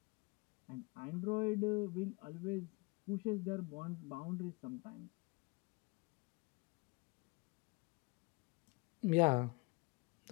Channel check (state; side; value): quieter; right; 26.9 dB